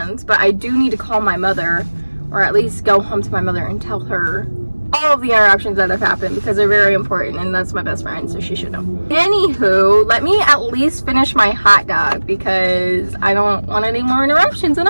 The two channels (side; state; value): both; inverted; correlation -1.00